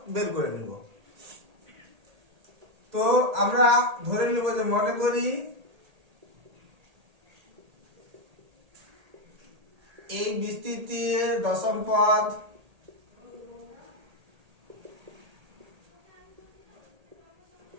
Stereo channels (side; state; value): left; late; 1.8 ms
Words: বের করে নেব। তো আমরা ধরে নেব যে মনে করি এই বিস্তৃতির দশম পদ